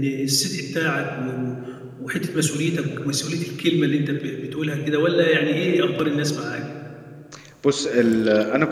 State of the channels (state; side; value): identical; both; correlation 1.00